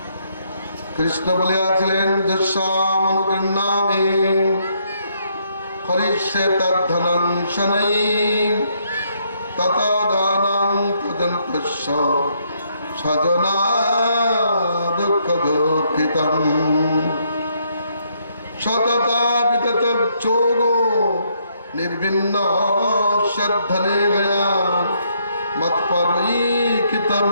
কৃষ্ণ বলিয়াছিলেন, যস্যামনুগৃহ্ণামি হরিষ্যে তদ্ধনং শনৈ ততো দানং তদন্তস্য স্বজনা দুঃখ দুঃখিতং সততা বিতত যোগো নির্বিন্ন শ্রদ্ধনে গয়া মৎপরৈকিত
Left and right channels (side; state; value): both; inverted; correlation -0.72